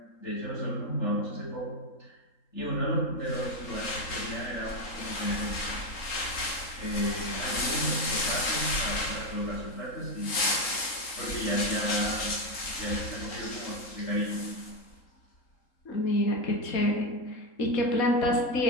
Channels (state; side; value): late; right; 3.8 ms